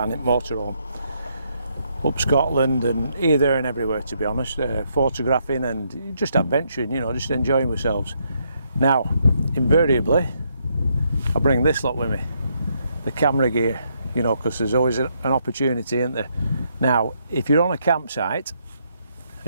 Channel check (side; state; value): both; inverted; correlation -0.75